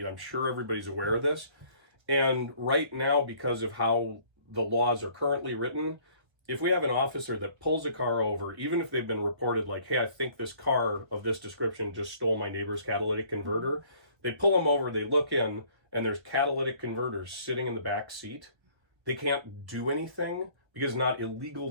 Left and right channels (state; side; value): late; left; 1.3 ms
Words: I'm sure everybody's aware of this. And right now, because of how the laws are currently written, if we have an officer that pulls a car over, even if they've been reported like, hey, I think this car of this description just stole my neighbor's catalytic converter, they pull them over, they look in, and there's catalytic converters sitting in the back seat. They can't do anything because it's not